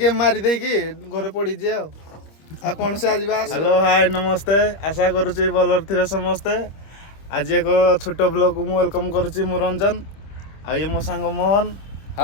ମାରି ଦେଇକି ଘରେ ପଡିଛି ଆଉ କଣ ସେ ଆଜି ହ୍ୟାଲୋ ହାଇ ନମସ୍ତେ ଆଶା କରୁଛି ଭଲରେ ଥିବେ ସମସ୍ତେ। ଆଜି ଏକ ଛୋଟ ବ୍ଲଗକୁ ମୁଁ ୱେଲକମ କରୁଛି ମୁଁ ରଞ୍ଜନ ଆଉ ଇଏ ମୋ ସାଙ୍ଗ ମୋହନ।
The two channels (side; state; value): right; late; 25 ms